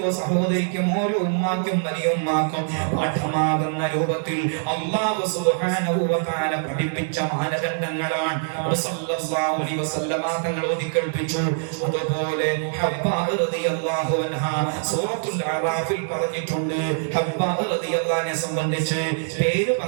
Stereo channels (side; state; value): left; silent; digital silence